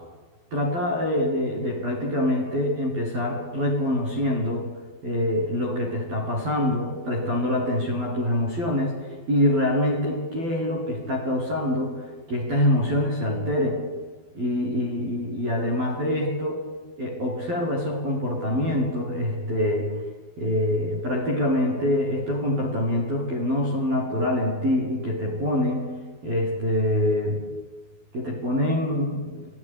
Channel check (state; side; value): late; left; 12 ms